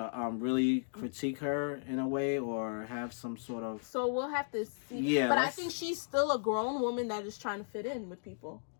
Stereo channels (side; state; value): right; silent; digital silence